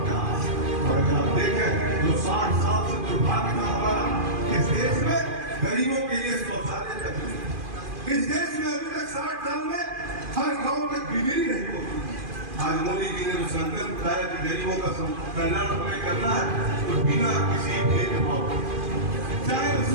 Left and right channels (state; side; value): late; left; 2.5 ms